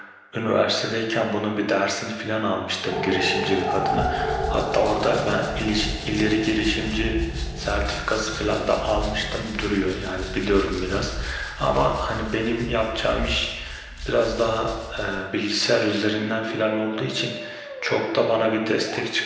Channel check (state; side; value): identical; both; correlation 1.00